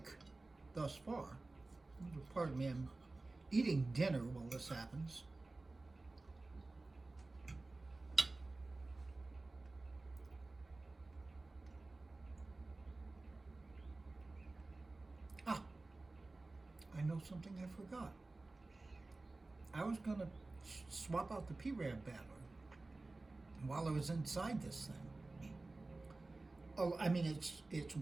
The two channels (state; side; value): quieter; left; 3.2 dB